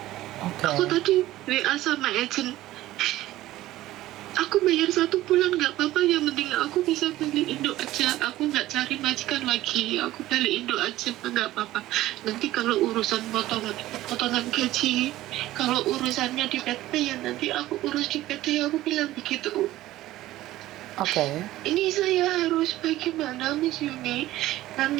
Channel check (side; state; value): left; quieter; 15.6 dB